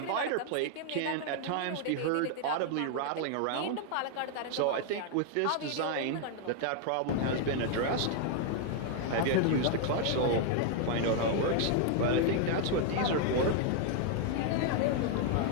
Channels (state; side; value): different; both; correlation 0.00